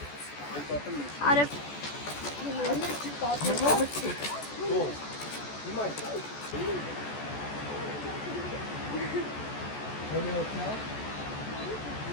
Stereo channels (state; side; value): late; right; 14 ms